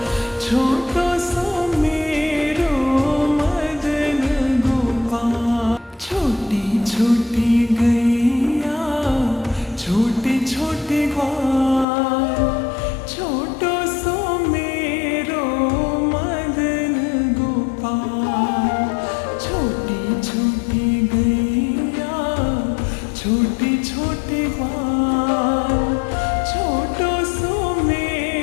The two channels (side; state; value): right; drops out; at 11.9 s